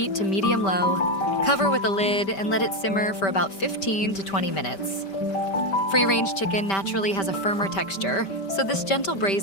to medium-low, cover with a lid, and let it simmer for about 15 to 20 minutes. Free-range chicken naturally has a firmer texture, so this gentle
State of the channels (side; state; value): right; late; 5.1 ms